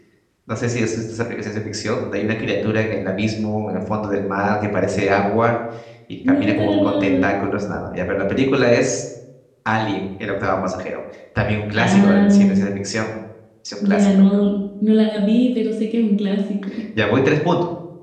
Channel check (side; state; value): both; identical; correlation 1.00